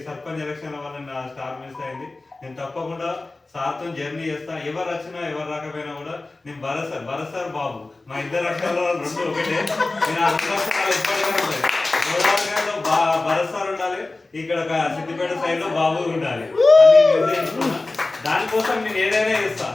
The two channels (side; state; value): right; quieter; 3.2 dB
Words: సర్పంచ్ ఎలక్షన్ల వల్ల నా స్టార్ మిస్ అయింది. నేను తప్పకుండా సార్తో జర్నీ చేస్తా. ఎవరు వచ్చినా ఎవరు రాకపోయినా కూడా నేను భరత్ సార్ బాబు, మా ఇద్దరు అక్షరాలు రెండు ఒకటే. నేను ఆ రెండు అక్షరాలు ఎప్పటికీ ఉంటాయి. గోదావరిలో భరత్ సార్ ఉండాలి, ఇక్కడ సిద్దిపేట సైడ్ లో బాబు ఉండాలి అని నిర్ణయించుకున్నా. దానికోసం నేను ఏదైనా చేస్తా,